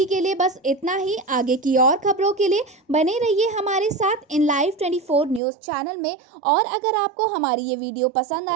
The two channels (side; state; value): left; drops out; at 5.4 s